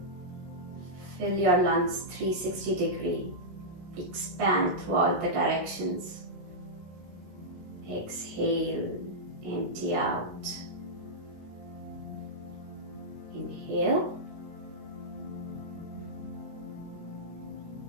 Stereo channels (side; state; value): left; late; 16 ms